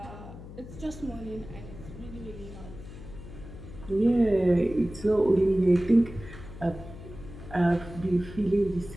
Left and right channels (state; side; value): noise; left; hum, 14 dB below the sound